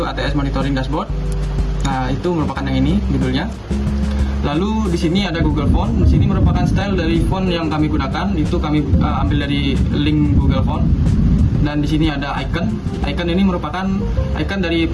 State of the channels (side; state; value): both; identical; correlation 1.00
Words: ATS Monitoring Dashboard. Nah, itu merupakan yang ini judulnya. Lalu di sini ada Google Font. Di sini merupakan style dari font yang kami gunakan, itu kami ambil dari link Google Font. Dan di sini ada icon. Icon ini merupakan icon dari